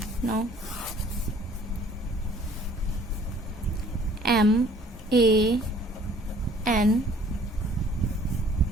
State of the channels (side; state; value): both; normal; correlation 0.56